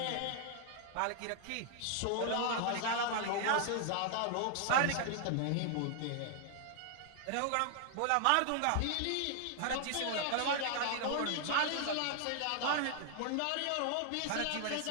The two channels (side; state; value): both; different; correlation 0.00